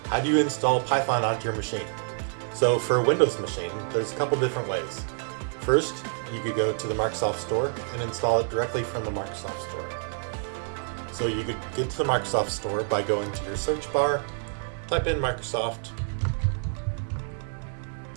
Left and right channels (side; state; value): left; silent; 60 dB below the other